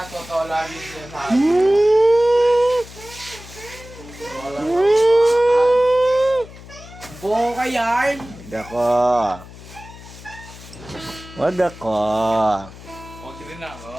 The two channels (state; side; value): noise; left; hum, 17 dB below the sound